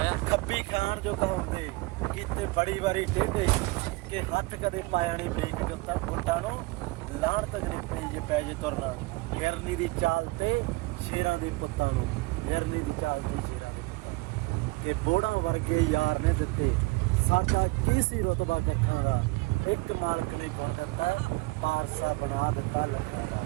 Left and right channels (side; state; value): left; quieter; 23.6 dB